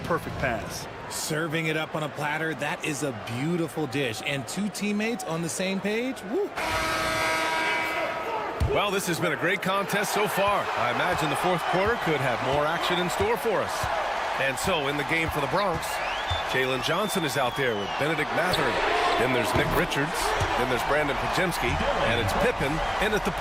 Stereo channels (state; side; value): identical; both; correlation 1.00